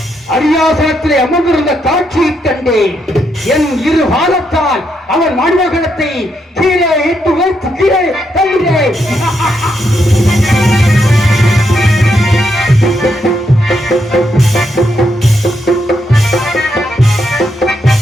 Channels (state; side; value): normal; both; correlation 0.79